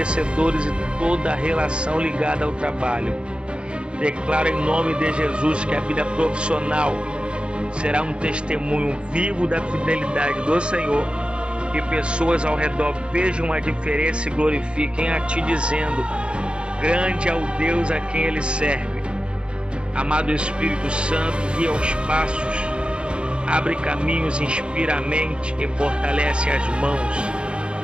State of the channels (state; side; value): late; left; 0.055 ms